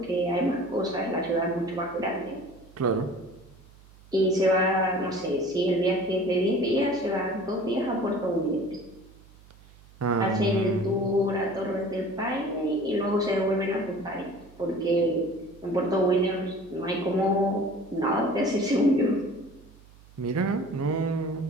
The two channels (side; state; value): right; noise; hum, 24 dB below the sound